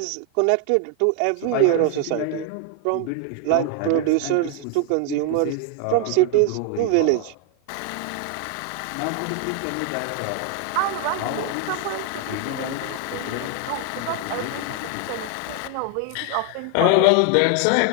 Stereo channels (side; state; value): both; different; correlation 0.00